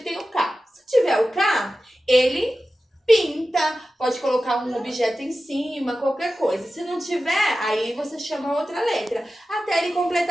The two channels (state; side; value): normal; both; correlation 0.94